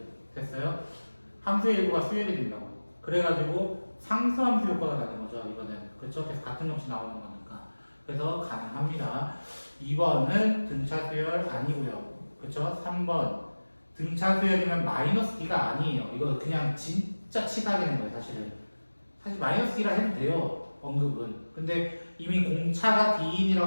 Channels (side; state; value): both; inverted; correlation -1.00